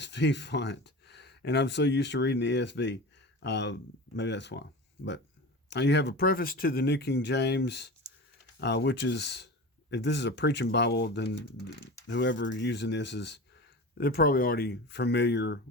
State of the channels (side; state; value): both; normal; correlation 0.31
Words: font, and I'm so used to reading the ESV. Maybe that's why. But you have a preface to the New King James, which is, if this is a preaching Bible, then whoever using this they're probably already familiar